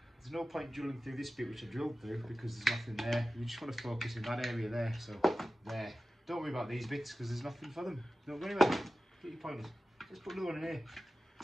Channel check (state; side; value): normal; both; correlation 0.95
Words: There's no point drilling through this bit, which I drilled through, because there's nothing there. You just want to focus in that area there, so there. Don't worry about these bits, because there's nothing for them. Don't go anywhere. Get your pointers. Let's put another one in here.